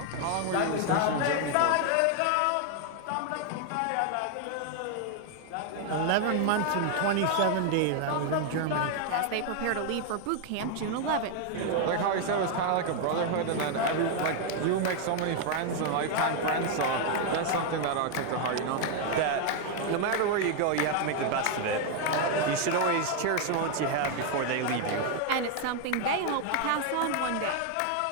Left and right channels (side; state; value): both; different; correlation 0.00